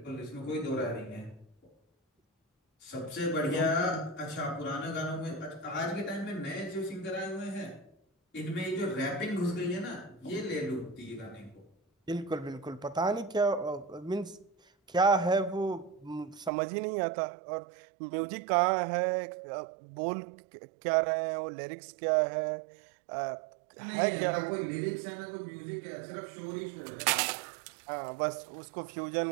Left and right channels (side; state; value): left; drops out; at 16.5 s